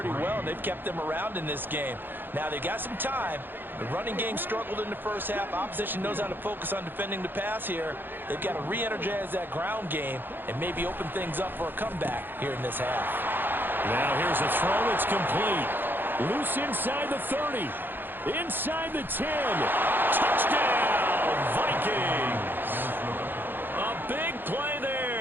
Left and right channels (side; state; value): left; late; 0.096 ms